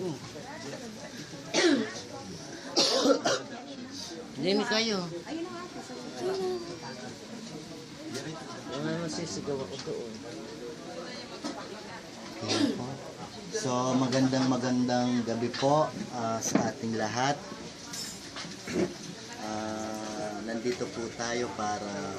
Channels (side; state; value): both; identical; correlation 1.00